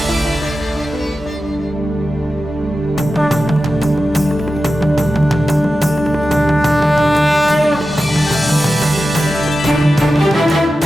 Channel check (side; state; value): both; normal; correlation 0.92